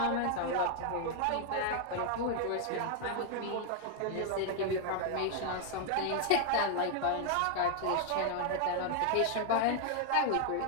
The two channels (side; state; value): both; different; correlation 0.00